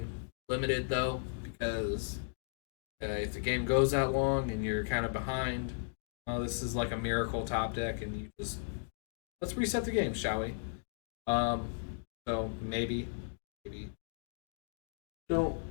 limited though, because if the game goes that long and you're kind of behind, this is like a miracle top deck, and you just let's reset the game, shall we? So maybe don't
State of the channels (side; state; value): right; silent; digital silence